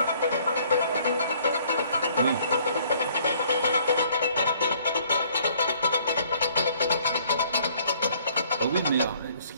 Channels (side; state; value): both; inverted; correlation -0.60